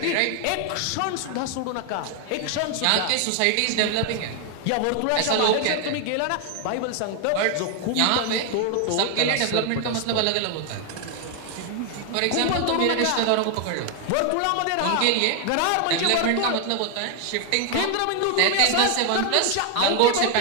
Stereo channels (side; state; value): both; different; correlation 0.00